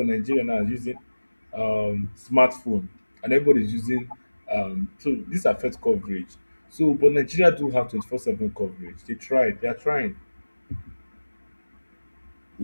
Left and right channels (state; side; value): inverted; both; correlation -1.00